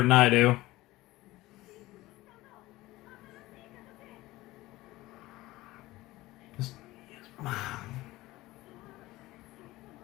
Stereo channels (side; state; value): right; quieter; 18.3 dB